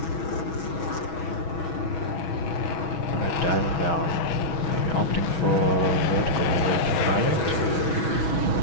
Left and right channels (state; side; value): late; right; 6.2 ms